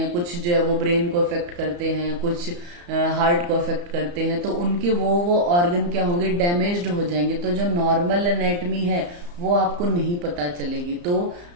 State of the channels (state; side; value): late; left; 34 ms